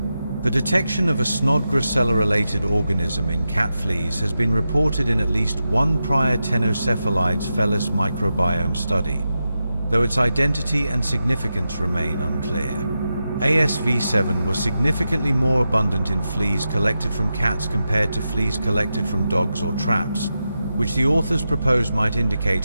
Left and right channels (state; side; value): inverted; both; correlation -0.90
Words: The detection of a Snodgrassella-related organism in cat fleas has been reported in at least one prior Ctenocephalides felis microbiome study, though its identity and significance remain unclear. ASV7 was significantly more abundant in fleas collected from cats compared to fleas collected from dogs or traps, which the authors propose might